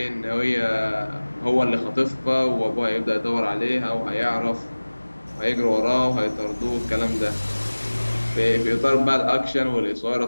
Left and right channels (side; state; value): both; inverted; correlation -1.00